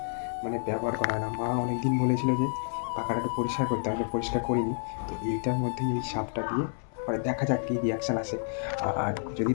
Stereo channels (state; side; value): silent; right; 58 dB below the other